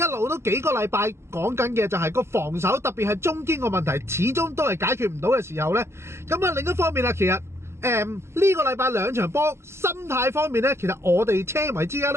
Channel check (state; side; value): late; left; 0.13 ms